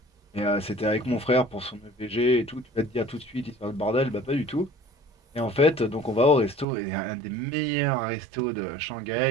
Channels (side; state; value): left; drops out; at 6.7 s